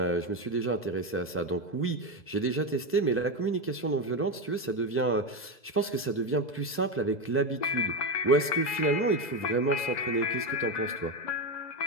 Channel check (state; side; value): late; right; 2.0 ms